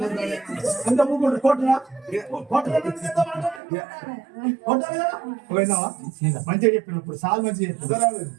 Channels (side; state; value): left; drops out; at 3.6 s